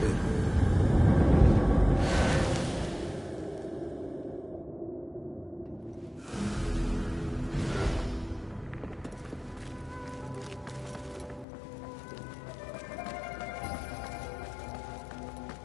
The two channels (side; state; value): right; drops out; at 11.5 s